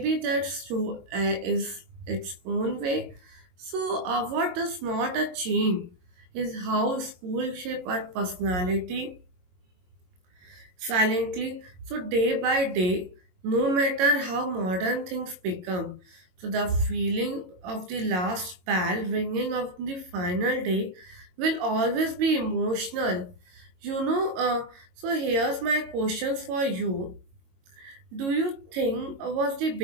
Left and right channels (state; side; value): late; left; 22 ms